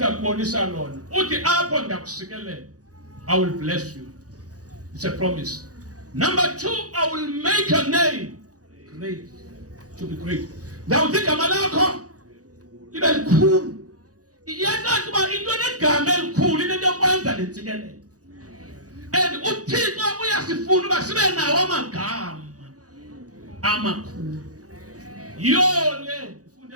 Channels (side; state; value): left; late; 0.67 ms